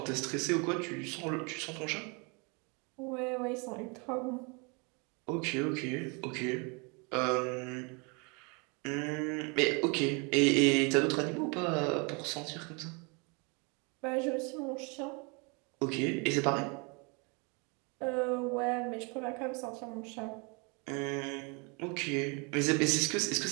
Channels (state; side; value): quieter; left; 31.9 dB